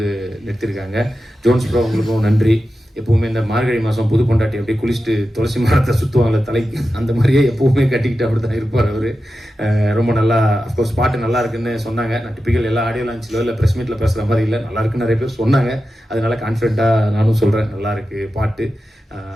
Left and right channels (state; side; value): normal; both; correlation 0.92